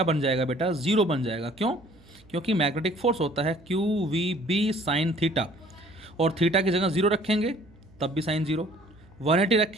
बन जाएगा बेटा, जीरो बन जाएगा। क्यों? क्योंकि मैग्नेटिक फोर्स होता है Q we B sine theta, और थीटा की जगह जीरो रखेंगे तब भी साइन जीरो, 180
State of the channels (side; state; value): right; noise; hum, 27 dB below the sound